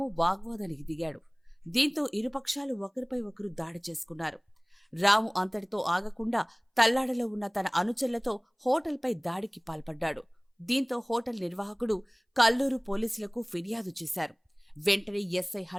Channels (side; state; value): both; identical; correlation 1.00